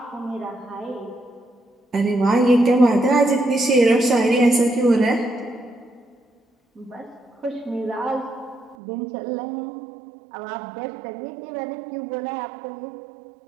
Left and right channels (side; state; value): left; drops out; at 8.8 s